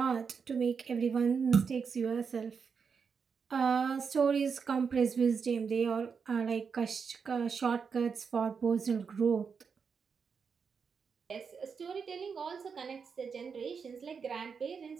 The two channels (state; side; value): quieter; left; 5.9 dB